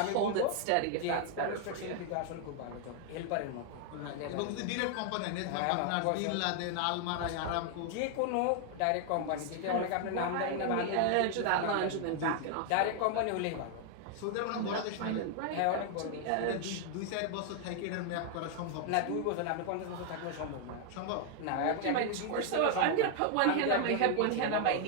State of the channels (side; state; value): both; different; correlation 0.00